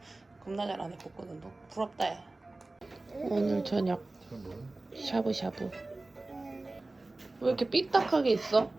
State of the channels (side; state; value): left; quieter; 3.0 dB